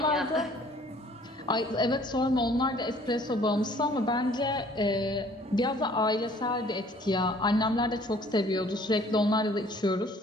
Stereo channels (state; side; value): normal; both; correlation 0.56